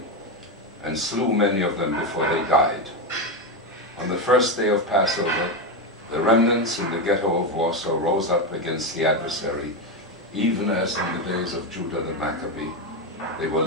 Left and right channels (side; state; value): both; normal; correlation 0.11